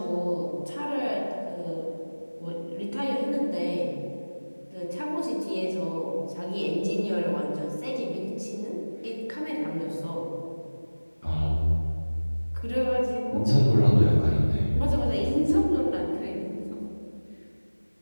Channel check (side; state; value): both; inverted; correlation -1.00